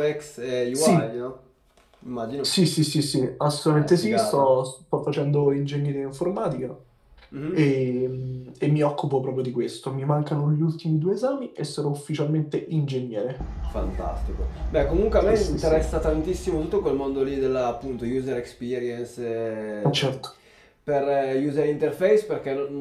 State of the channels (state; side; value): identical; both; correlation 1.00